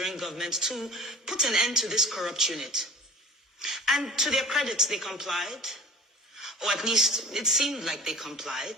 government to put an end to this corrupt unit. And to their credit, they complied. Or at least it seemed like they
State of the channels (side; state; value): both; normal; correlation 0.42